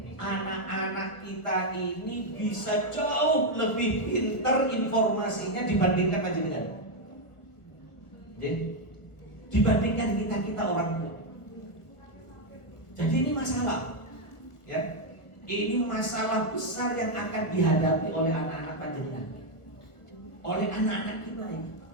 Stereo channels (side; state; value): right; late; 1.5 ms